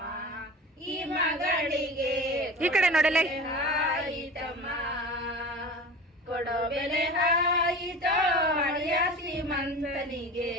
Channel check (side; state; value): both; normal; correlation 0.34